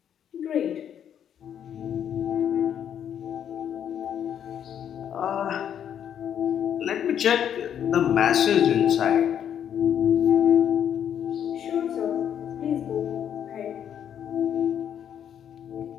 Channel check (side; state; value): right; quieter; 9.2 dB